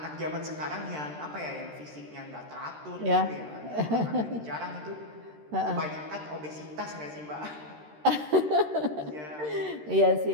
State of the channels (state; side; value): late; left; 13 ms